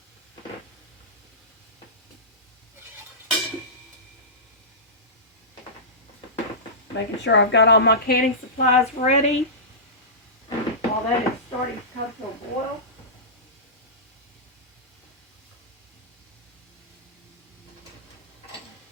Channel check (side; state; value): both; normal; correlation -0.19